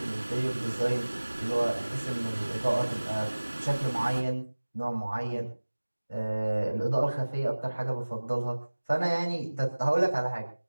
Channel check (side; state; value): both; inverted; correlation -1.00